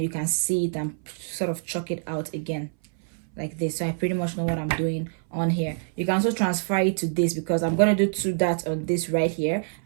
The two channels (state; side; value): silent; left; 59 dB below the other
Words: you can see it and sort of chalk it out again like this. So I pretty much know what I'm doing on here. You can also transfer it to this, because I'm going to do 2 darts on this right here